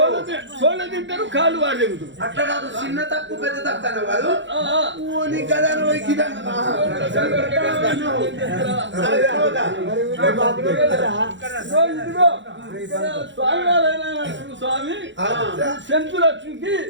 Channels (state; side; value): late; left; 0.54 ms